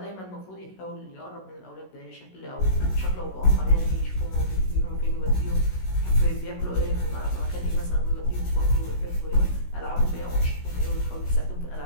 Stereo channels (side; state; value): right; late; 16 ms